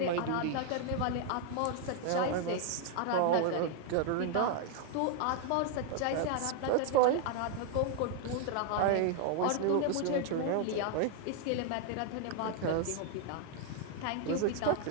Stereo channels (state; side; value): different; both; correlation 0.00